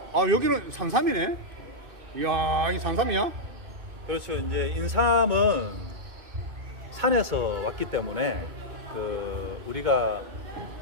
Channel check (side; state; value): left; late; 2.6 ms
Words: 여기는 산삼이네? 이야, 이 산삼이야? 그렇죠. 이제 인삼은 산에서 왔기 때문에 그 우리가